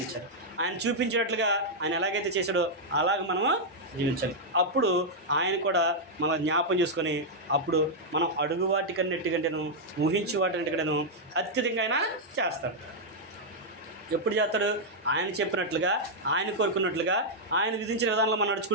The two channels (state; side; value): normal; both; correlation -0.04